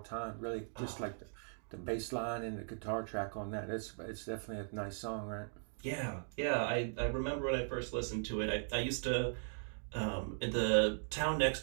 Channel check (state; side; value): silent; left; digital silence